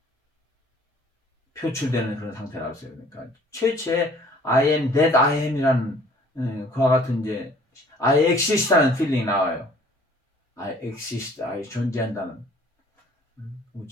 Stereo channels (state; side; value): normal; both; correlation 0.55